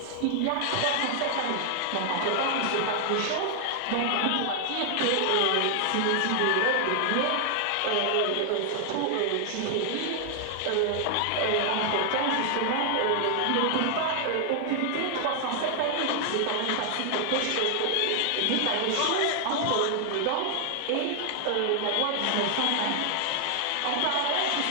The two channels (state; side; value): different; both; correlation 0.00